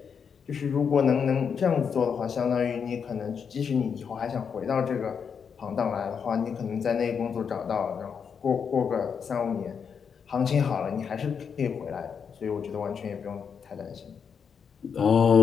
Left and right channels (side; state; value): right; quieter; 6.7 dB